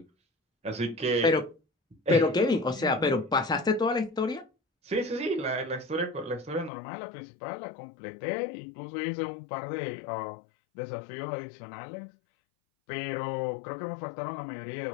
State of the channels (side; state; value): right; drops out; at 6.7 s